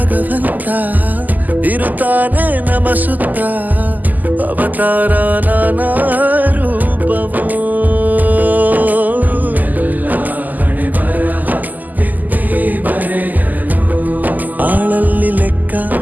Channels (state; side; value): late; left; 0.083 ms